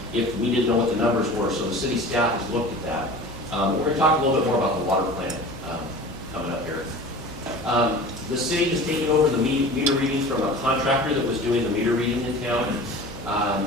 if we didn't know what the numbers were, so the city staff has looked at that. We're going to talk a little bit more about the water plant coming up here. The city has taken over the meter readings from a contractor that was doing the meter reading in town.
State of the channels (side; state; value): both; normal; correlation 0.38